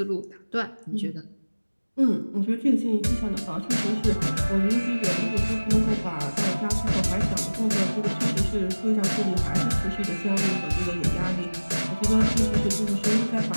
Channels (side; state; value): both; inverted; correlation -1.00